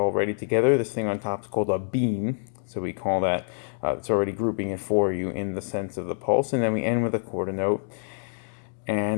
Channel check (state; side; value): silent; right; 61 dB below the other